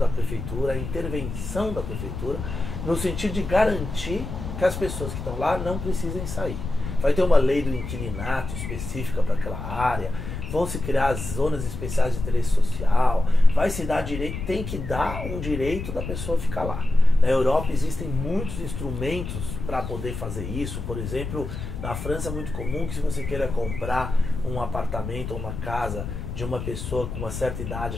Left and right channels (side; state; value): left; noise; rumble, 7 dB below the sound